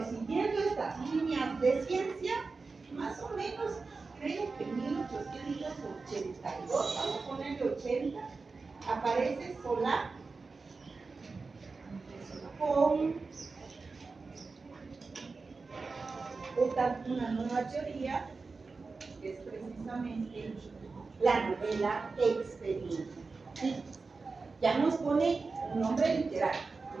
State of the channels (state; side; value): quieter; left; 4.2 dB